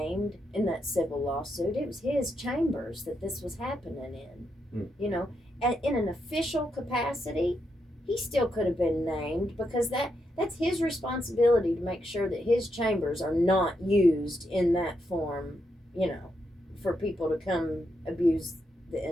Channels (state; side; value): normal; both; correlation 0.82